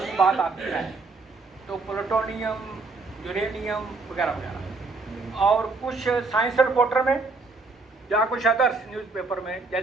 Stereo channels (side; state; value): left; quieter; 3.8 dB